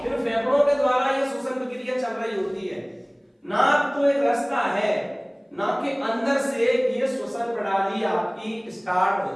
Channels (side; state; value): both; identical; correlation 1.00